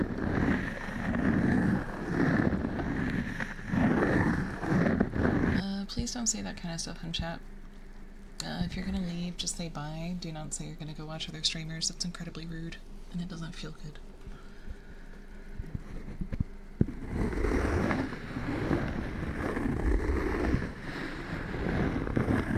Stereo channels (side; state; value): both; identical; correlation 1.00